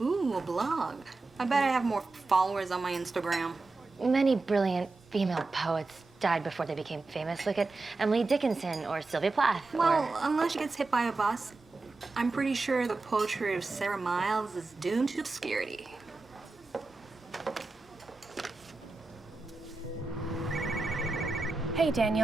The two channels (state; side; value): quieter; left; 3.6 dB